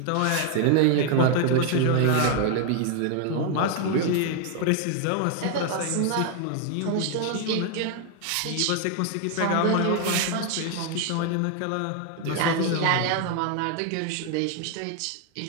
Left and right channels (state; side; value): different; both; correlation 0.00